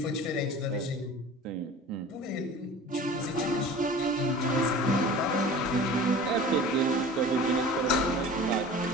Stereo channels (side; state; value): both; normal; correlation 0.40